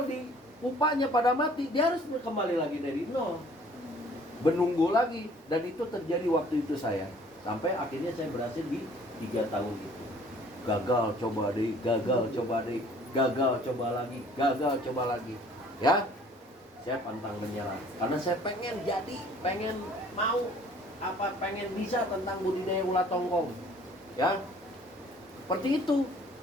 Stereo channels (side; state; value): both; normal; correlation 0.55